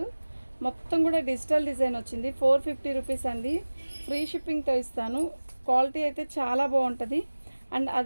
మొత్తం కూడా డిజిటల్ డిజైన్ వచ్చింది. ₹450 అండి, ఫ్రీ షిప్పింగ్తో ఇస్తాను. క్వాలిటీ అయితే చాలా బాగుంటుంది. అండ్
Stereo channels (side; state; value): both; inverted; correlation -1.00